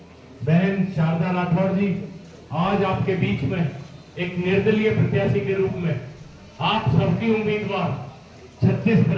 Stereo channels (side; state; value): both; identical; correlation 1.00